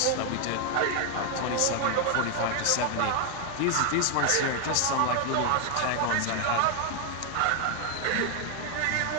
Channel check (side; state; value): both; different; correlation 0.01